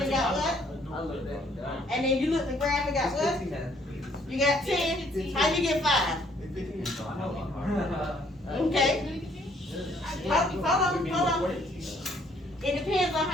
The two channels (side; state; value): both; normal; correlation 0.65